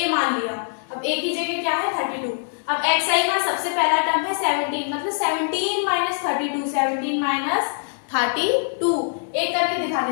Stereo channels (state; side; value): silent; right; 63 dB below the other